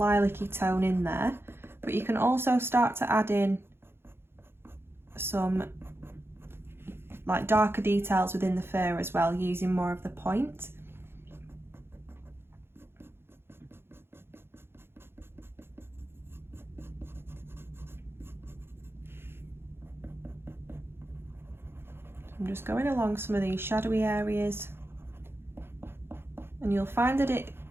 tone in there. But you can also start to add in some like darker details within the fur as well, using more of the point. I'm just going along some of these shadowy areas, and you'll find that it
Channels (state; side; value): late; left; 0.11 ms